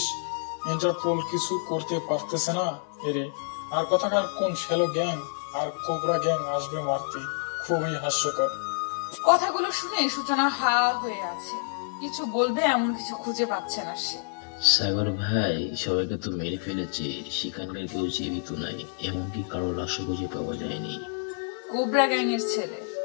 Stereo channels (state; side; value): silent; right; digital silence